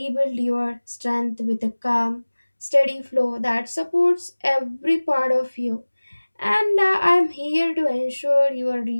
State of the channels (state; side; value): inverted; both; correlation -1.00